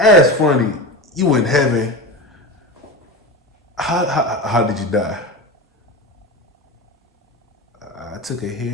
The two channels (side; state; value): both; normal; correlation 0.24